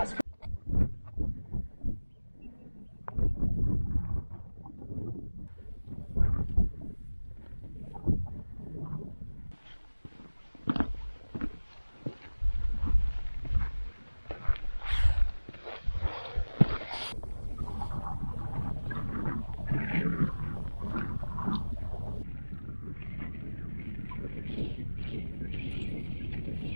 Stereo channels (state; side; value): inverted; both; correlation -1.00